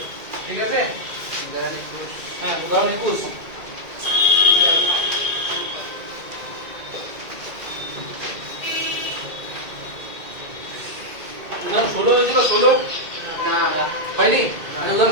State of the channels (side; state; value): left; late; 2.2 ms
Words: ঠিক আছে? হ্যাঁ, উদাহরণ 21। উদাহরণ 16 হয়েছিল, 16 না হয়নি? আমি